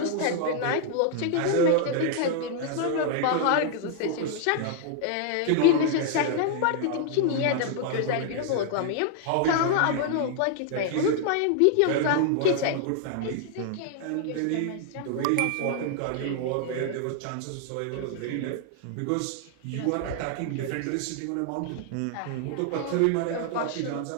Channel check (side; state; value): both; different; correlation 0.00